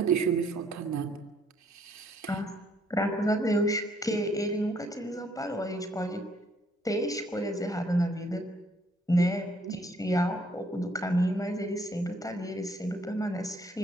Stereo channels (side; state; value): both; normal; correlation 0.66